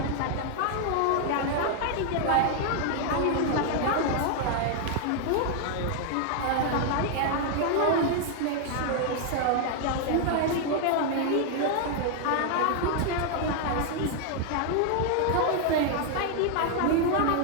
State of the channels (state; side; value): different; both; correlation 0.00